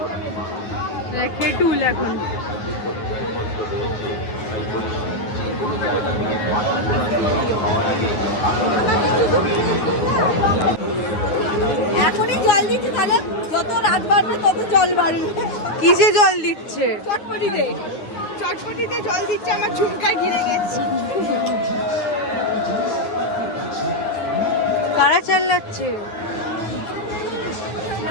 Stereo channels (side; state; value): right; late; 9.5 ms